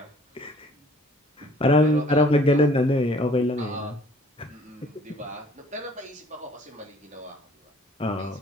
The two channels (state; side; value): normal; both; correlation 0.55